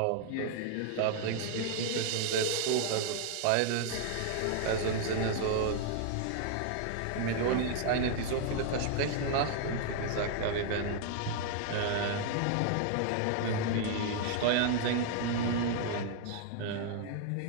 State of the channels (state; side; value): different; both; correlation 0.00